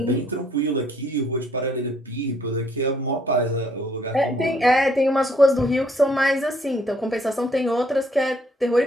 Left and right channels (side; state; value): both; normal; correlation 0.66